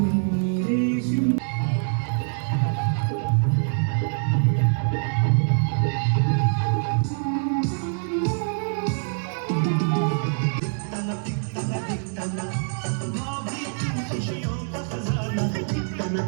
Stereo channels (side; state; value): left; silent; 58 dB below the other